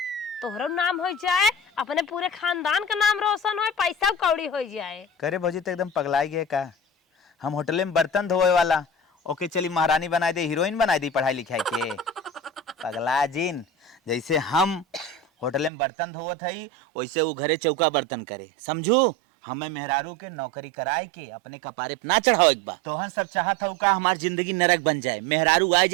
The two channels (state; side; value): drops out; left; at 15.7 s